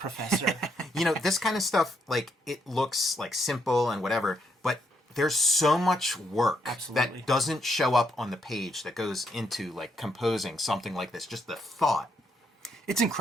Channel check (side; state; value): both; normal; correlation 0.76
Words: This kind of stuff, it looks simple and whatever, but there's so much work that doesn't show up on the page that goes into composing something like this. Just the thought. It's